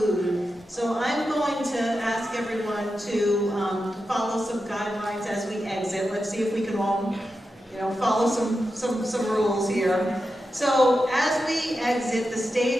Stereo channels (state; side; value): normal; both; correlation 0.90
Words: So I'm going to ask everyone to follow some guidelines as we exit. Let's see if we can all, follow some rules here. So as we exit, the